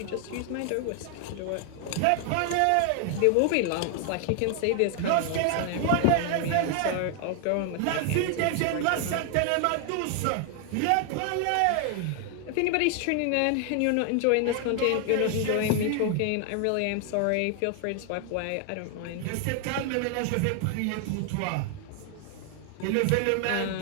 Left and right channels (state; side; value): different; both; correlation 0.00